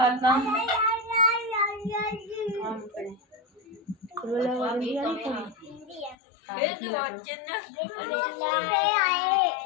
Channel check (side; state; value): right; drops out; at 6.2 s